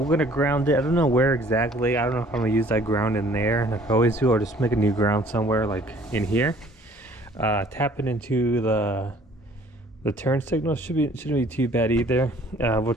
going to ground it. I don't know where exactly. I don't know if I'm going to use that ground in there like I always do, or just make a new ground somewhere like in here. Tapping into the turn signal shouldn't be too bad either. We'll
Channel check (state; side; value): normal; both; correlation 0.56